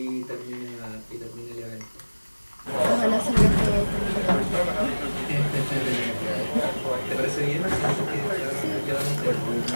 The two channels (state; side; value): inverted; both; correlation -1.00